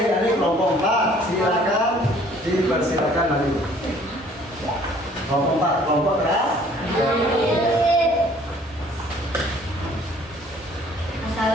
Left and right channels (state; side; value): normal; both; correlation 0.56